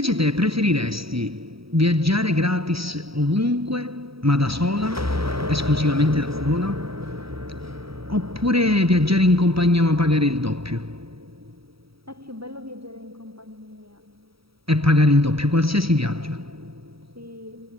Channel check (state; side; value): late; left; 0.76 ms